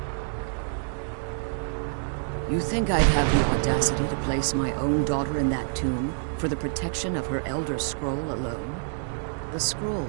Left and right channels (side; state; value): left; silent; digital silence